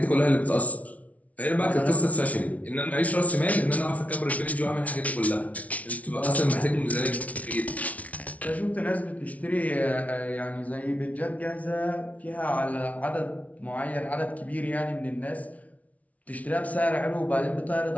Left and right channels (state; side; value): late; right; 0.068 ms